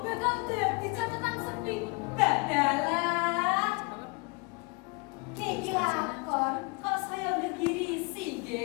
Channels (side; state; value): right; quieter; 29.7 dB